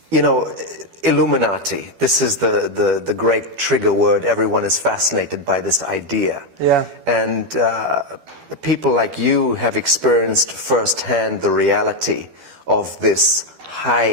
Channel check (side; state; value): left; late; 12 ms